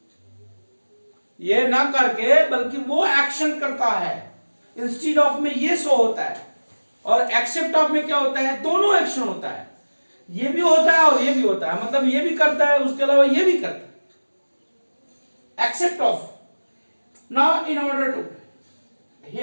ये ना करके बल्कि वो एक्शन करता है. इंस्टीड ऑफ में ये शो होता है, और एक्सेप्ट ऑफ में क्या होता है, दोनों एक्शन होता है, ये भी होता है और ये भी होता है, मतलब ये भी करता है उसके अलावा ये भी करता है. Except of. Now in order to,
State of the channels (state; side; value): inverted; both; correlation -1.00